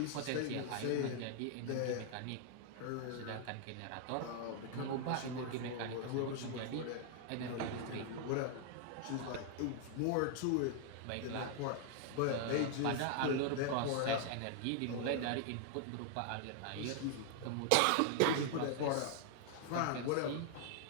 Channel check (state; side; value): different; both; correlation 0.00